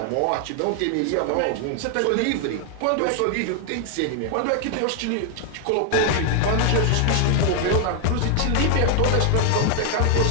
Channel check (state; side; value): different; both; correlation 0.00